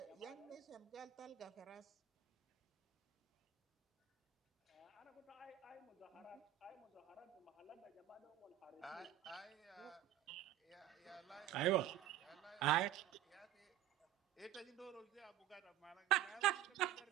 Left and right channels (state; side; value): quieter; left; 13.5 dB